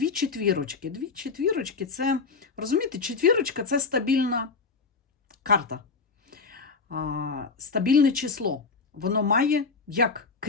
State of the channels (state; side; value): quieter; right; 4.6 dB